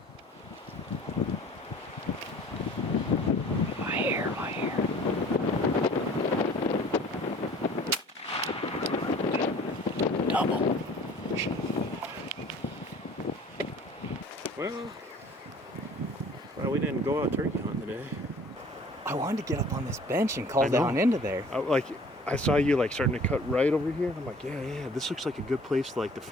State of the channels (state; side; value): normal; both; correlation 0.50